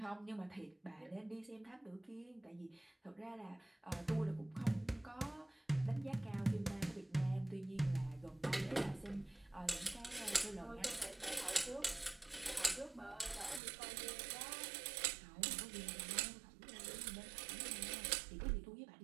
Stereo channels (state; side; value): drops out; left; at 13.6 s